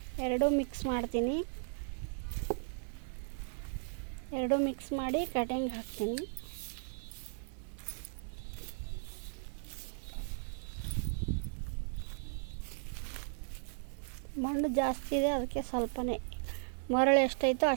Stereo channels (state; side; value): silent; left; 54 dB below the other